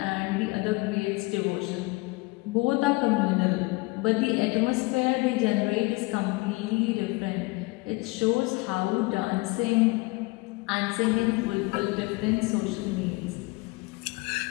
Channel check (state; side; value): quieter; right; 24.6 dB